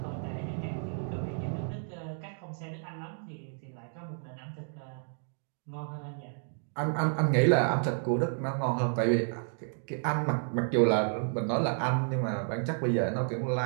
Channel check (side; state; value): left; silent; 56 dB below the other